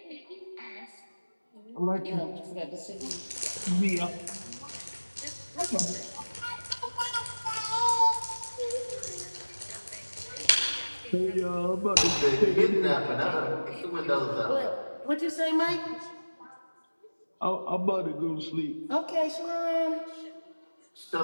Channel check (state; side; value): inverted; both; correlation -1.00